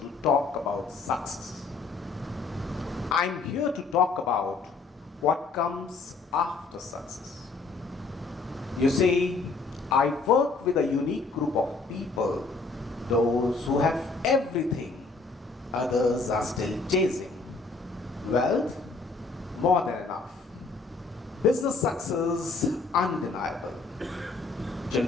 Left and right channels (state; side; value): quieter; right; 4.0 dB